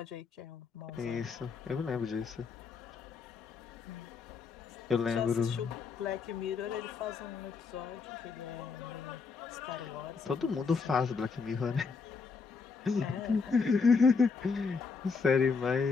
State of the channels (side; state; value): right; quieter; 5.0 dB